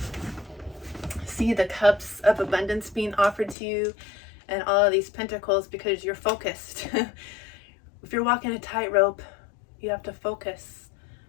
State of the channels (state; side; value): drops out; right; at 3.6 s